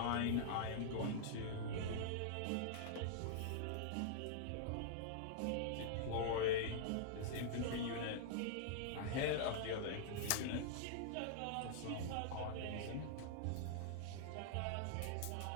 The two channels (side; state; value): both; different; correlation -0.02